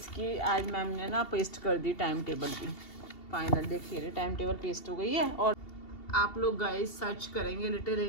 आज मैम ने ना पेस्ट कर दी टाइम टेबल भी। फाइनल देखिए टाइम टेबल पेस्ट हो गई है। और आप लोग गाइस सर्च करेंगे लिटिल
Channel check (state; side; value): late; right; 2.7 ms